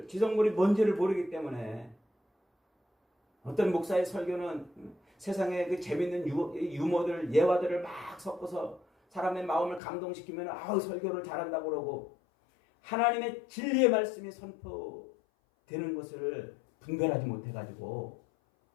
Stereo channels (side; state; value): right; drops out; at 9.8 s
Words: 뭔지를 모르기 때문에, 어떤 목사의 설교는 세상에 그 재밌는 유머들, 예화들을 막 섞어서 사람의 마음을 감동시키면 설교를 잘한다고 그러고, 하나님의 진리의 말씀이 선포되는 것을 분별하지 못해가지고